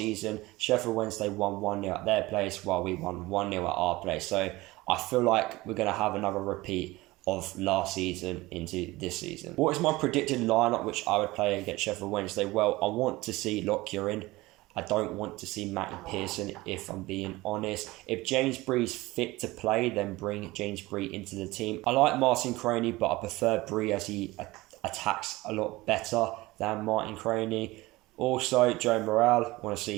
Sheffield Wednesday won 1-0 at their place while we won 1-0 at our place. So I feel like we're going to have another repeat of last season into this season. What is my predicted lineup which I would play against Sheffield Wednesday? Well, I want to see Lockyer in. I don't want to see Matty Pearson, if I'm being honest. If James Bree's fit to play, then bring James Bree into the team. I like Martin Croney, but I prefer Bree as he attacks a lot better than Martin Croney. Also, Joe Morrell, I want to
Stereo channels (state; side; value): quieter; left; 20.1 dB